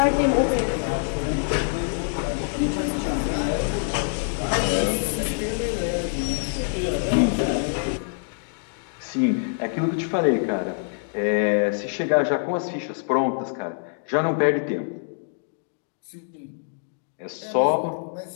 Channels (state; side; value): silent; right; 62 dB below the other